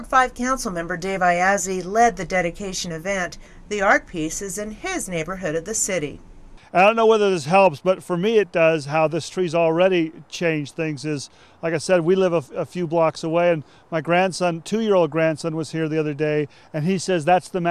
5 Councilmember Dave Iazzi led the dedication event. The art piece is in his neighborhood of the city. I don't know whether this helps, but for me it does. How this tree's already changed things is, like I said, we live a few blocks away, and my grandson, 2-year-old grandson, was here the other day, and he says that's the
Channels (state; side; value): identical; both; correlation 1.00